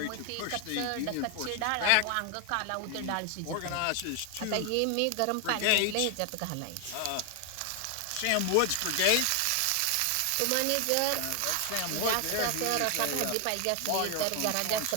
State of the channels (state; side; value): different; both; correlation 0.00